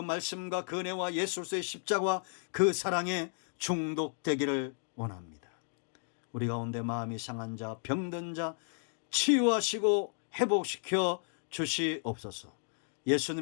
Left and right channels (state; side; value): silent; right; 55 dB below the other